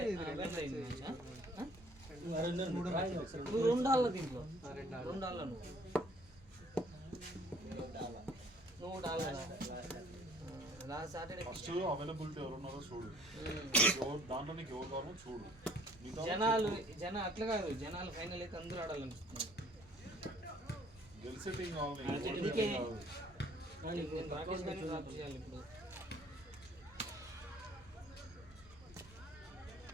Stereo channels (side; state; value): both; normal; correlation 0.58